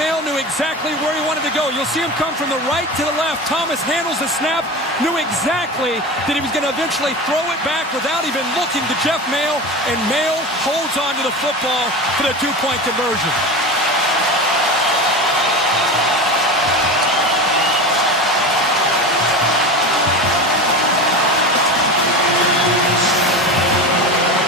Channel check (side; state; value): both; normal; correlation 0.27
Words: knew exactly where he wanted to go. You'll see him come from the right to the left. Thomas handles the snap. Knew exactly that he was going to eventually throw it back without even looking to Jeff Maehl. And Maehl holds on to the football for the 2-point conversion.